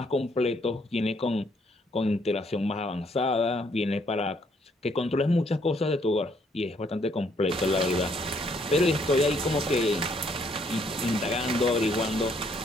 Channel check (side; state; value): both; normal; correlation 0.68